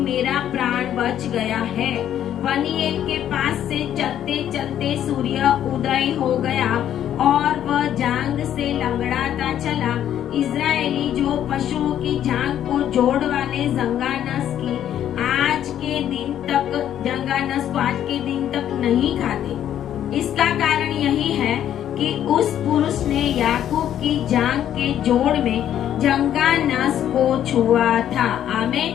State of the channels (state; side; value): quieter; right; 10.7 dB